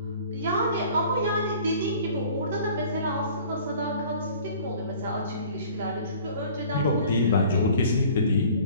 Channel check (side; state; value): both; inverted; correlation -0.49